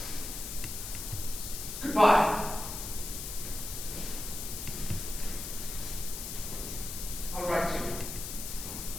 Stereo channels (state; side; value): noise; left; hiss, 6 dB below the sound